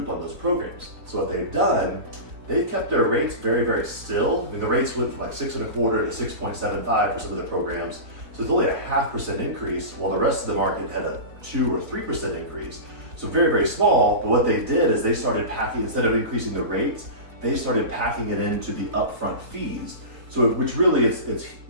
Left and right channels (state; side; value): late; left; 3.8 ms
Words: on those programs. So what they've done, they've kept their rates very, very still. I mean, the rates went from like 6.25 to 6.75 for some of the programs. So it's only a 0.5% increase, while the rest of the market had a 2 or 3% increase. So very, very small. But what they did is they started packing, instead of increasing the rates, they started packing it into the upfront fees. So which really it's